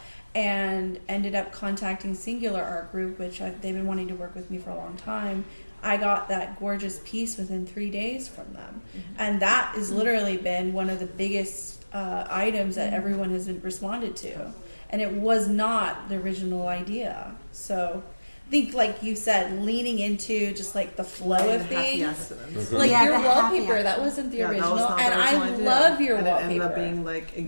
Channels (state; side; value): inverted; both; correlation -1.00